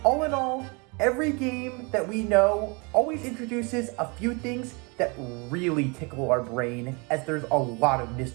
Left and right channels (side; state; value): left; quieter; 30.5 dB